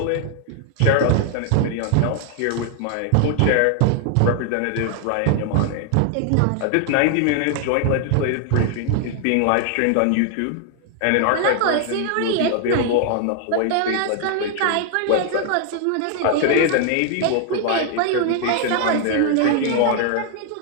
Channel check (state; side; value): different; both; correlation 0.00